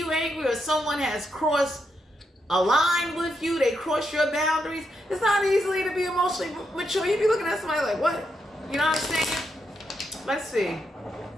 angry, or someone has crossed a line with you, they cross your boundaries. It's not easy to be emotionally mature. You be looking at somebody like, what? You know what I'm saying? Let's see.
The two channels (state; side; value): normal; both; correlation 0.82